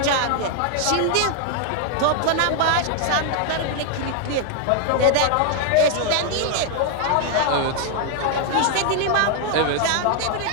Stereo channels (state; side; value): different; both; correlation 0.00